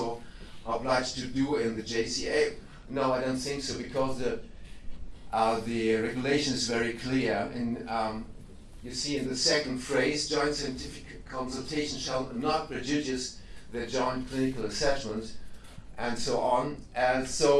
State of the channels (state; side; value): identical; both; correlation 1.00